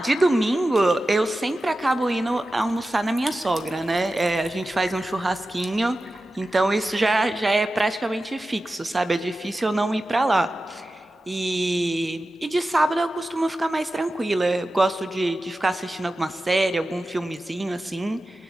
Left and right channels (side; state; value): both; normal; correlation 0.94